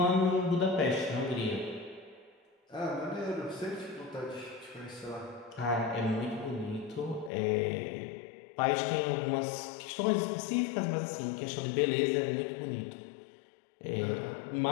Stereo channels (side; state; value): right; drops out; at 7.3 s